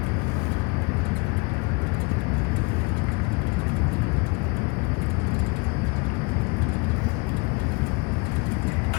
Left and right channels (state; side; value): quieter; right; 29.0 dB